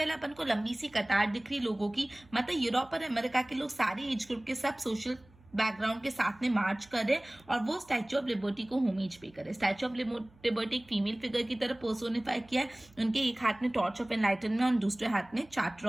अपन को लंबी सी कतार दिख रही लोगों की, मतलब यूरोप और अमेरिका के लोग, सारे एज ग्रुप के, सब सोशल बैकग्राउंड के साथ में मार्च करे और वो स्टैच्यू ऑफ लिबर्टी को होमेज पे करे। स्टैच्यू ऑफ लिबर्टी एक फीमेल फिगर की तरह पर्सोनिफाई किया है। उनके एक हाथ में टॉर्च ऑफ एनलाइटनमेंट और दूसरे हाथ में चार्टर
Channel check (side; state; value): right; noise; hum, 27 dB below the sound